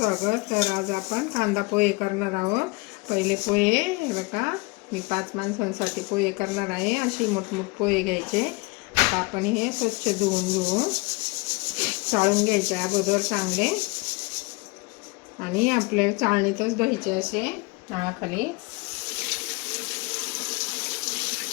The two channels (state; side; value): quieter; right; 26.8 dB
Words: तर आज आपण कांदा पोहे करणार आहोत. पहिले पोहे हे बघा, मी 5 माणसांसाठी पोहे करणार आहे. अशी मोठमोठ पोहे घ्यायचे. आता आपण हे स्वच्छ धुवून चाळून घ्यायचे अगोदर चांगले, आणि आपल्या चाळणीतच धुवायचे असे नावाखाली